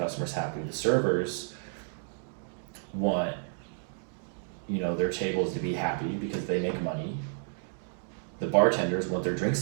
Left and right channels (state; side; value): silent; left; digital silence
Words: happy, the servers want their tables to be happy because they make money, the bartenders want their